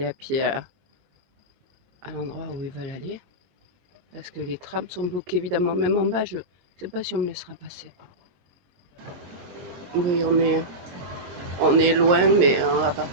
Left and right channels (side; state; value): left; late; 22 ms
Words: à pied à l'endroit où ils veulent aller. Parce que les trams sont bloqués évidemment, même en bas, je ne sais pas si on me laissera passer. Oui, on est loin, mais à